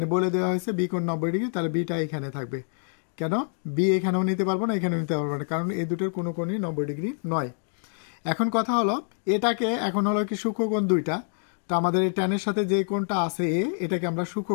বলে দেওয়া হয়েছে বি কোণ 90 ডিগ্রি, তাহলে বিটা এখানে থাকবে। কেন বি এখানেও নিতে পারবো না, এখানেও নিতে পারবো না, কারণ এই দুটোর কোনো কোণই 90 ডিগ্রি নয়। এখন কথা হলো, এটাকে এখন হলো কি সূক্ষ্মকোণ দুইটা, তো আমাদের এই ট্যানের সাথে যে কোণটা আছে এটাকে আমরা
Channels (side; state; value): right; silent; 61 dB below the other